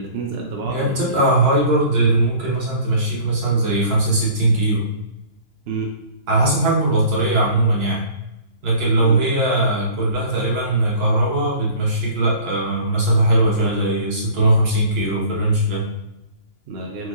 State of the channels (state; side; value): late; left; 2.9 ms